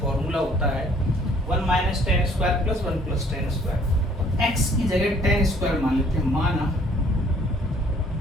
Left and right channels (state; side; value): normal; both; correlation 0.59